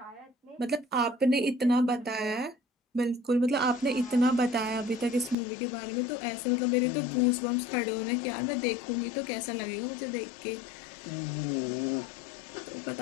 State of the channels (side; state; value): right; drops out; at 5.4 s